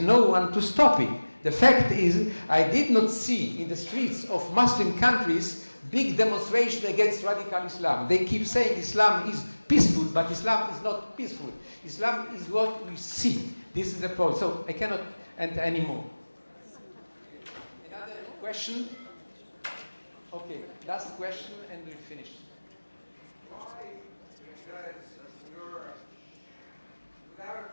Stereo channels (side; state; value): both; inverted; correlation -1.00